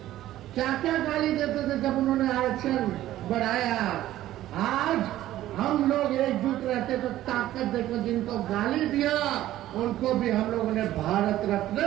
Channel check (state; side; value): quieter; left; 14.0 dB